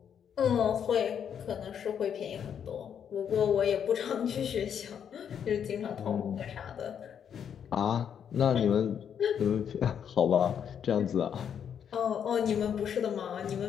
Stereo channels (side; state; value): right; quieter; 8.2 dB